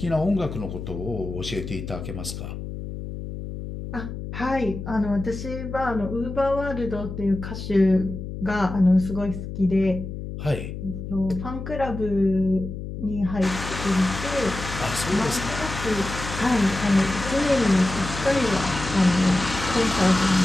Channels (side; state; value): left; noise; hum, 8 dB below the sound